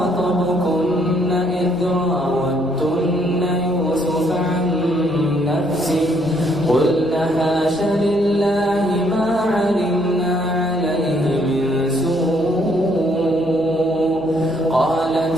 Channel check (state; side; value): noise; right; hum, 24 dB below the sound